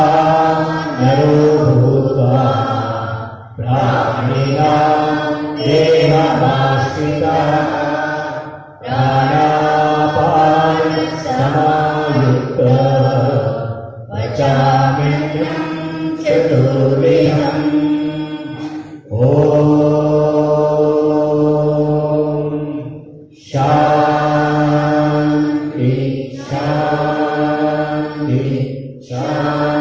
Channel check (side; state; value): both; identical; correlation 1.00